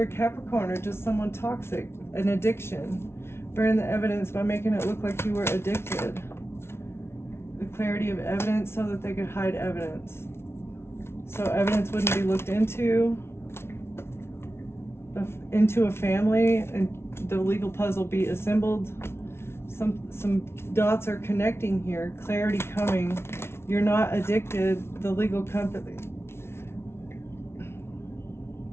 a Capricorn or just someone toxic, an addiction. Burn the evidence by making it look like you were addicted. The clarity of evidence so that they could hide evidence. So evidence wouldn't be looked into a family, and the legal puzzle be assembled. Some dots are connecting here. Clarity coming. You're not addicted. The legal company.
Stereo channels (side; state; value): right; late; 0.12 ms